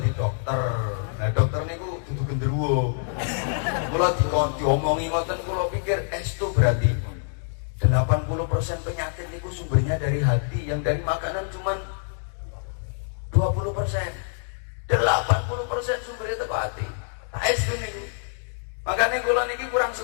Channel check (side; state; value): right; silent; digital silence